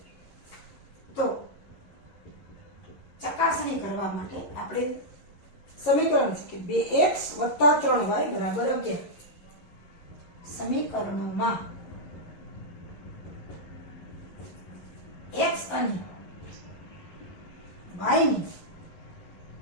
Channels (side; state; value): right; late; 11 ms